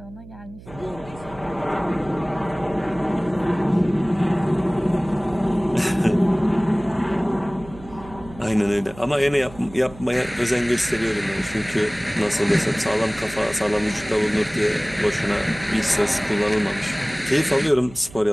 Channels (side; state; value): right; noise; hum, 18 dB below the sound